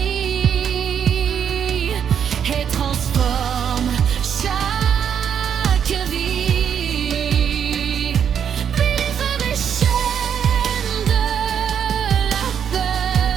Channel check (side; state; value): left; quieter; 8.2 dB